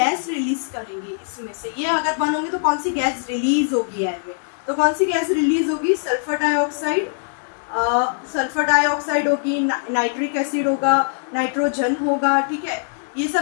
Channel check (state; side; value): silent; right; digital silence